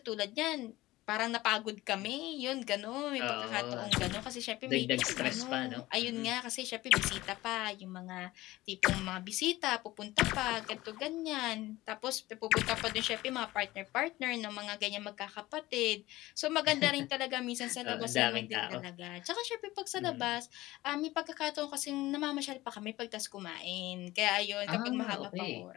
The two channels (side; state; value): right; quieter; 18.0 dB